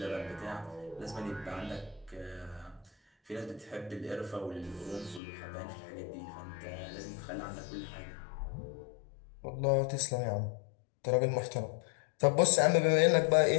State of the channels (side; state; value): right; drops out; at 5.2 s